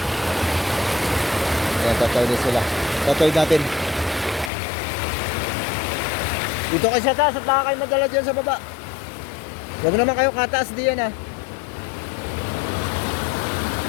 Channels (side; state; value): right; drops out; at 4.5 s